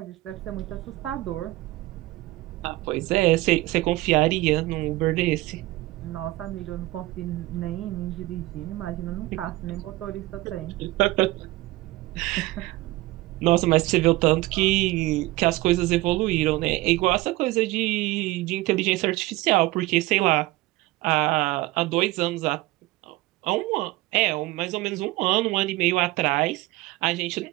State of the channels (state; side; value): quieter; left; 19.1 dB